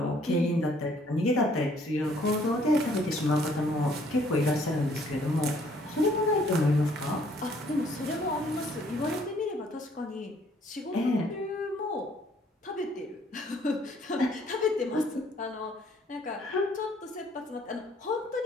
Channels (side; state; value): both; normal; correlation 0.62